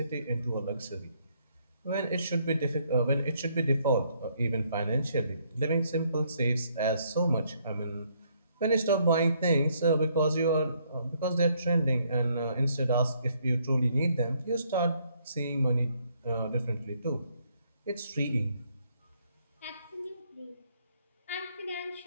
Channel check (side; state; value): both; inverted; correlation -0.69